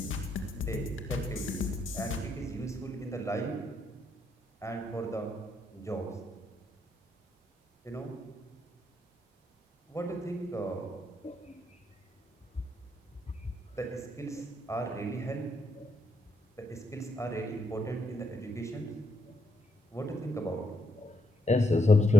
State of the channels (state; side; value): normal; both; correlation 0.78